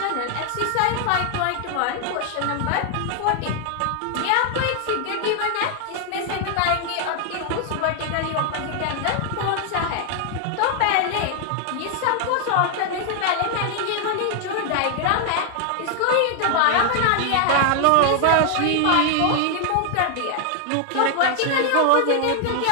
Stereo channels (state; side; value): different; both; correlation 0.00